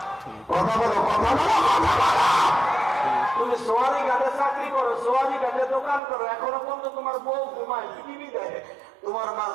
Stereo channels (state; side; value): drops out; left; at 6.0 s